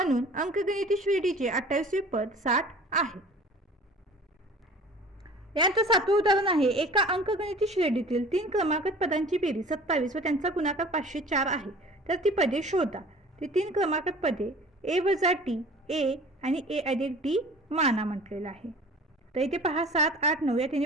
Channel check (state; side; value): normal; both; correlation 0.45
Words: अंकगणिती श्रेणीचे 28वे पद 60 आहे. यांचं 7वं उदाहरण आहे. एका अंकगणिती श्रेणीतील 3 क्रमांकित पदांची बेरीज 27 व त्यांचा गुणाकार 504 आहे, तर ती पदे शोधा. ती 3 क्रमांकित पदे a वजा टी, a आणि a अधिक डी माना म्हटलेलं आहे. तर इथे पहा 7, 8, 9 या